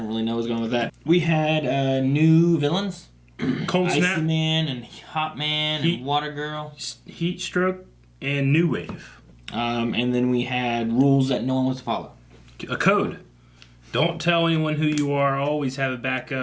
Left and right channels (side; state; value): both; identical; correlation 1.00